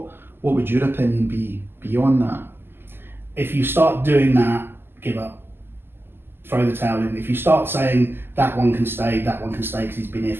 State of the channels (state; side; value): late; left; 0.11 ms